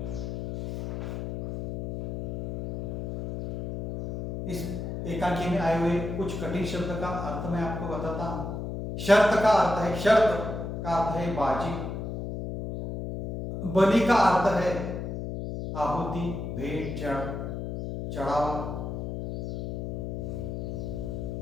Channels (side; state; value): left; noise; hum, 5 dB below the sound